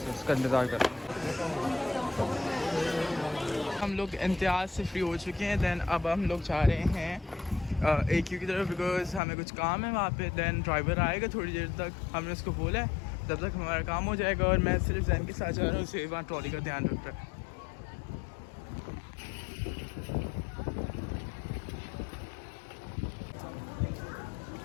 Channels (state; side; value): drops out; right; at 9.2 s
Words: उसका इंतज़ार कर रहे हैं। हम लोग इम्तियाज़ से फ्री हो चुके हैं। दैन अब हम लोग जा रहे हैं AQ की तरफ, बिकॉज हमें कुछ काम है वहाँ पे। दैन ड्राइवर आएगा थोड़ी देर तक, हमने उसको बोला है तब तक हमारा काम हो जाएगा। और मैं सिर्फ जैन के साथ जा रहा हूँ, उसे वहाँ ट्रॉली का ध्यान रख रहा है।